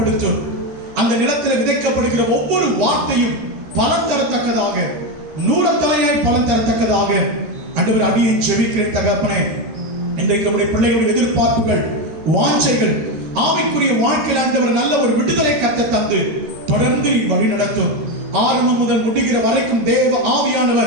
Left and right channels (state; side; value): late; left; 13 ms